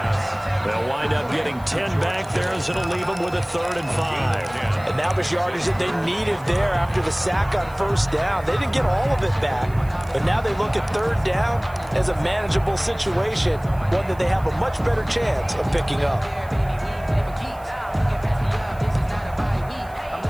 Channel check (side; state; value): right; noise; hiss, 26 dB below the sound